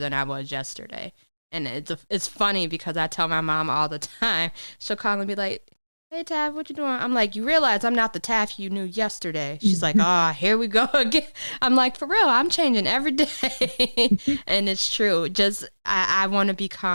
I was yesterday. And it's funny because I tell my mom all the time. She'll call and be like, "Hey, Taff, what you doing?" I'm like, "You realize I'm not the Taff you knew yesterday." She's like, "Here we go again." I'm like, "For real, I'm changing every day." And it's true. Just, I want to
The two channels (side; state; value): both; inverted; correlation -1.00